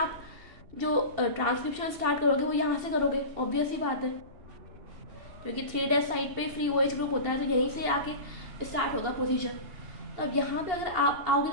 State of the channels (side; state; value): left; late; 2.7 ms